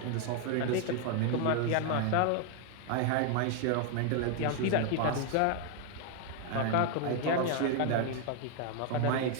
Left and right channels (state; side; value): different; both; correlation 0.00